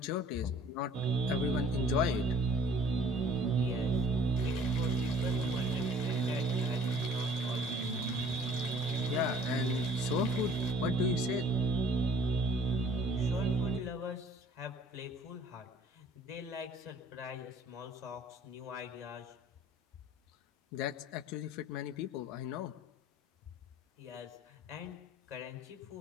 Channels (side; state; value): both; normal; correlation 0.54